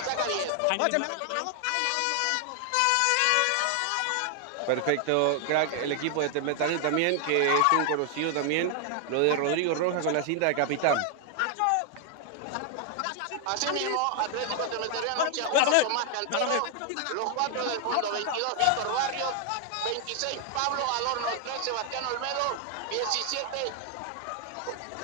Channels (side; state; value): both; different; correlation 0.00